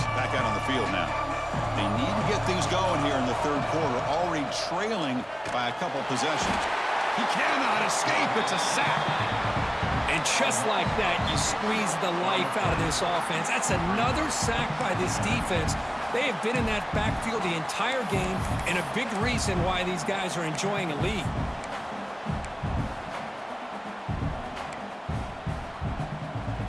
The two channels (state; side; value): identical; both; correlation 1.00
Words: back out on the field now. They need to get things going here in the third quarter, already trailing by a couple possessions. He cannot escape. It's a sack. And just like that, you squeeze the life out of this offense. That's another sack by this defense. They have been in that backfield the entire game, and a big reason why these guys are enjoying a lead.